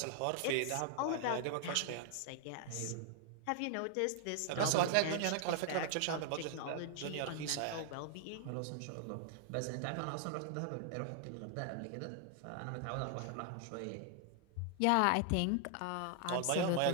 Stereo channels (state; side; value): different; both; correlation 0.00